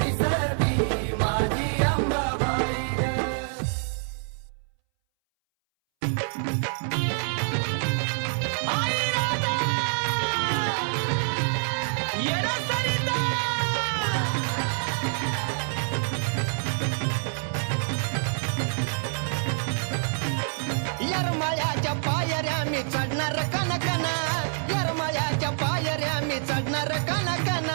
दिसती माझी अंबाबाई ग. यरमाळ्याच्या पायऱ्या मी चढणार कनकना. यरमाळ्याच्या पायऱ्या मी चढणार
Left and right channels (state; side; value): silent; left; 61 dB below the other